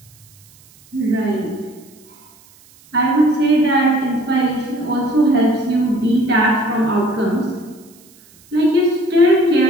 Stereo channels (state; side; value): noise; right; hiss, 28 dB below the sound